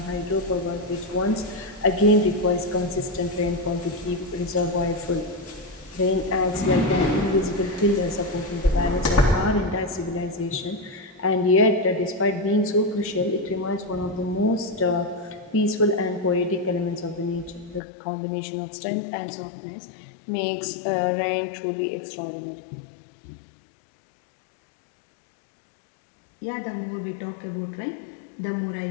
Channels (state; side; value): drops out; right; at 17.8 s